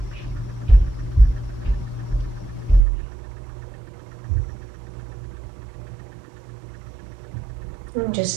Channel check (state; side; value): drops out; left; at 2.8 s